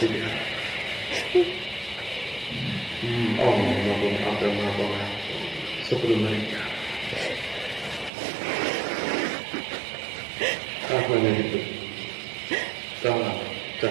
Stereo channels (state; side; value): drops out; left; at 8.1 s